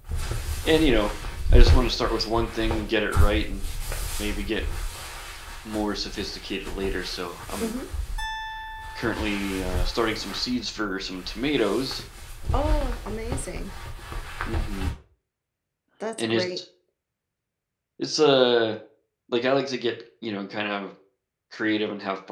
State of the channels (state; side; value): identical; both; correlation 1.00